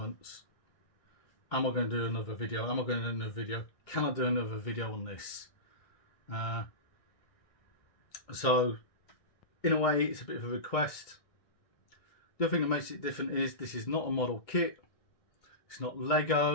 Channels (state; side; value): late; right; 1.6 ms